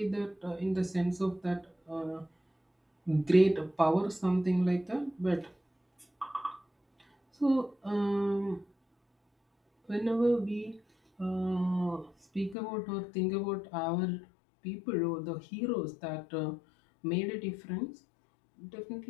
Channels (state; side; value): drops out; right; at 12.6 s